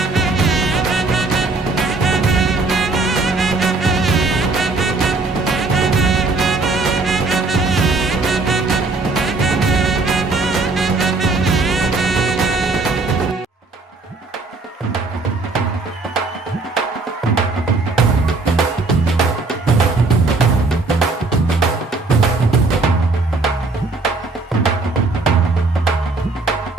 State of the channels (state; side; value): quieter; left; 3.6 dB